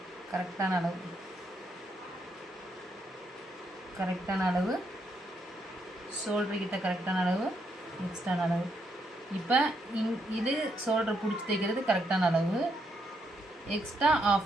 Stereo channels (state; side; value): normal; both; correlation 0.77